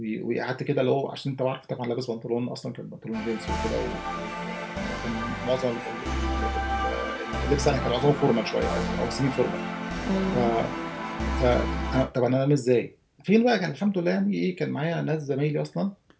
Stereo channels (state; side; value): identical; both; correlation 1.00